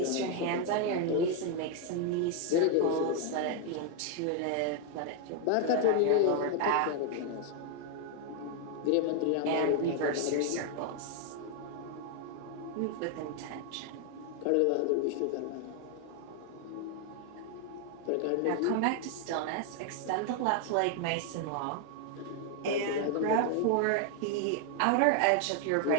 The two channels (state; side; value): different; both; correlation 0.01